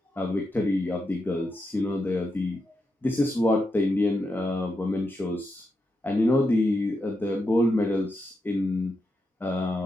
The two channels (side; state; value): both; normal; correlation 0.85